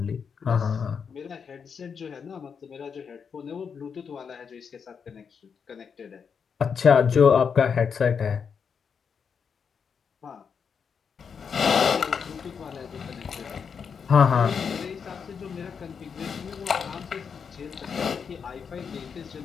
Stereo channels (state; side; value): quieter; right; 6.4 dB